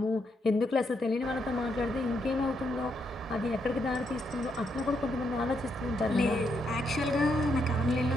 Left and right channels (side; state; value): both; normal; correlation 0.78